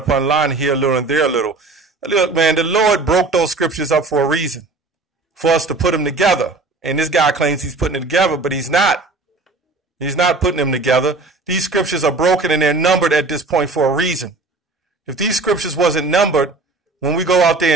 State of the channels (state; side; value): quieter; left; 3.5 dB